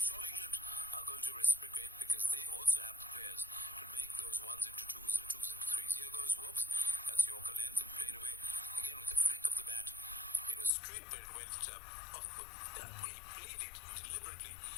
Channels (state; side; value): drops out; right; at 10.8 s